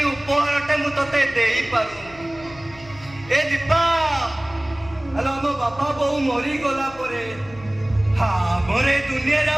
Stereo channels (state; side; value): noise; left; hum, 20 dB below the sound